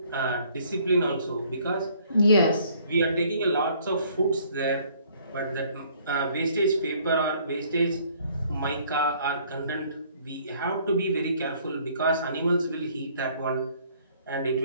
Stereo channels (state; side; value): inverted; both; correlation -0.60